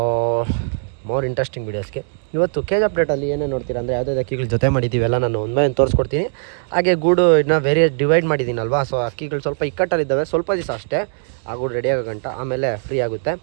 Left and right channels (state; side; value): silent; left; digital silence